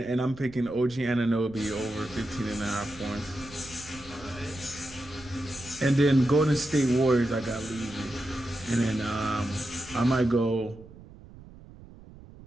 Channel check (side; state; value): right; noise; rumble, 19 dB below the sound